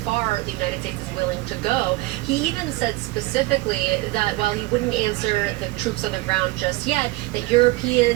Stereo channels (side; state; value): left; quieter; 20.4 dB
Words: the United States is willing to go. He even said specifically that while he wouldn't answer the troops on the ground just yet, that